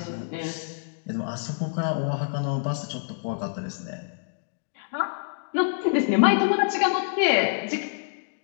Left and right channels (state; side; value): silent; right; digital silence